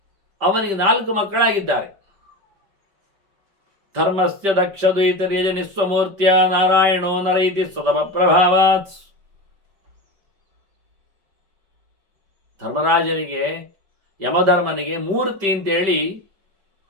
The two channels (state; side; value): late; left; 5.1 ms